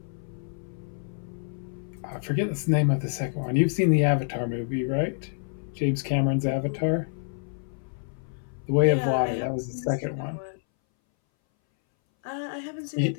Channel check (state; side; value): silent; right; 60 dB below the other